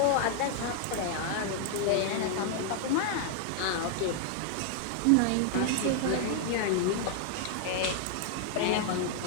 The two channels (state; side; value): different; both; correlation 0.00